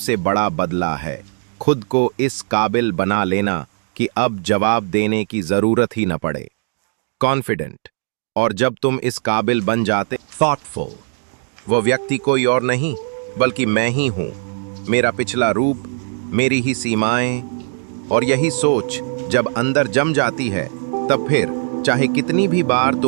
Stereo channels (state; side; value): silent; left; digital silence